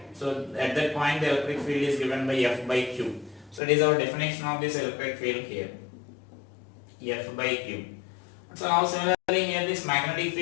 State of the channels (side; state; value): right; drops out; at 3.6 s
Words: So at that point the electric field is given by F by Q. So it is our definition of this electric field here, F by Q. So now similarly here this magnetic